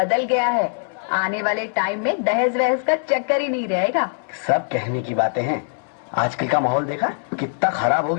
गया है, आने वाले टाइम में दहेज वहेज का चक्कर ही नहीं रहेगा। सब कहने की बातें हैं, आजकल का माहौल देखा कितना खराब हो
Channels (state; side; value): silent; right; digital silence